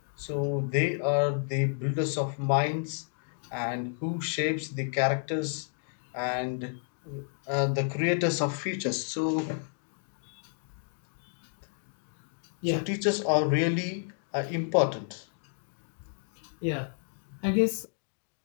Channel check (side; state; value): right; silent; 57 dB below the other